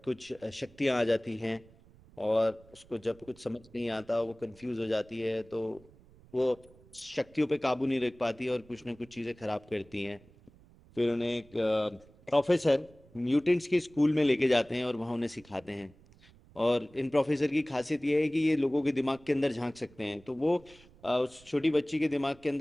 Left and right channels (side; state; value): right; noise; rumble, 26 dB below the sound